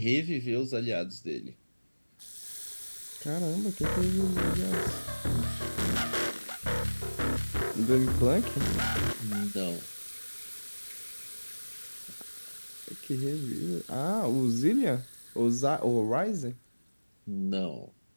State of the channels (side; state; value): both; inverted; correlation -1.00